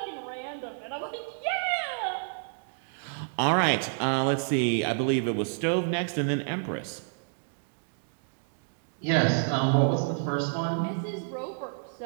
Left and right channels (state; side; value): silent; left; digital silence